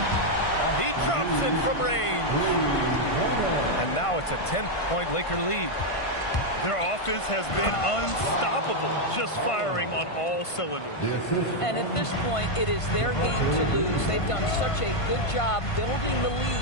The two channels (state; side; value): late; right; 1.5 ms